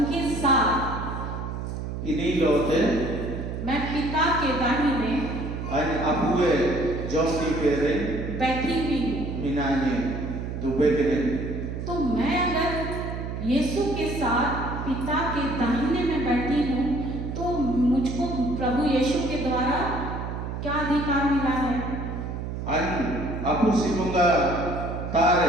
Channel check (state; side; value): noise; right; hum, 5 dB below the sound